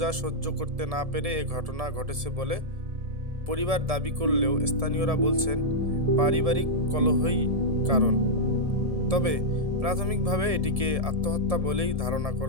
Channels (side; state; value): left; late; 1.7 ms